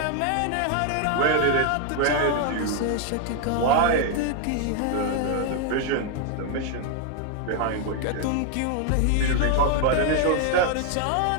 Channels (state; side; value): different; both; correlation 0.01